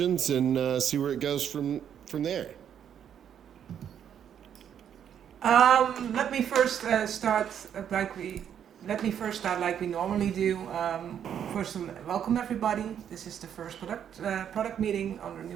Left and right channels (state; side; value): quieter; left; 9.0 dB